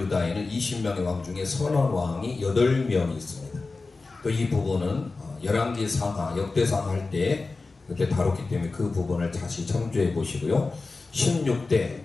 20명의 왕 중에 선원 왕이 8명이 있습니다. 또 이 부분은 열왕기 상하, 역대상하 할 때 그때 다뤘기 때문에 그 부분을 다시 참조해 보시고요.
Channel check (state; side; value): quieter; right; 3.8 dB